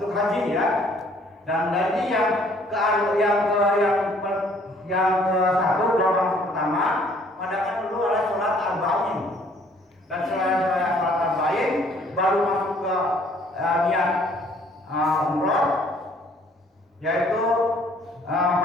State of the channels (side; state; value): both; normal; correlation 0.60